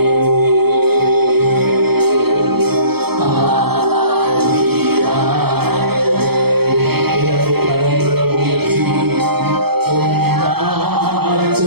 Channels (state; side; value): late; left; 0.96 ms